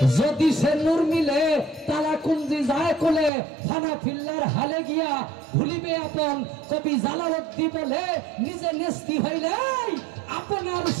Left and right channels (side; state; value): left; drops out; at 3.3 s